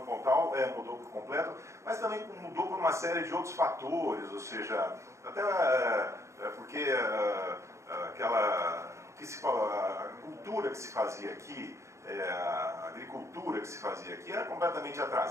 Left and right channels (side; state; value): left; late; 0.14 ms